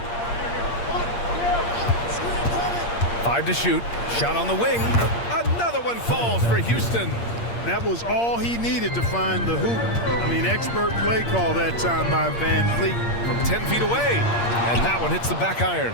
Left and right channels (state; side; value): late; right; 8.6 ms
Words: 5 to shoot. Shot on the wing. Another one falls for Houston. That was all he needed to find the hoop. I mean, expert play call that time by VanVleet. From 10 feet away. And that one hits the back iron.